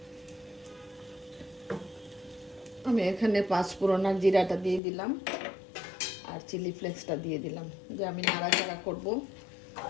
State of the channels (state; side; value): drops out; right; at 4.8 s